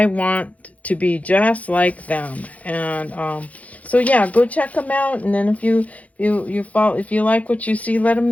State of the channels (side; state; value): right; late; 0.069 ms